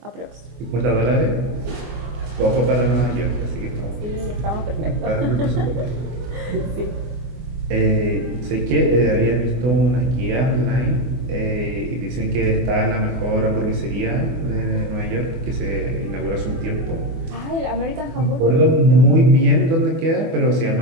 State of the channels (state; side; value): late; left; 24 ms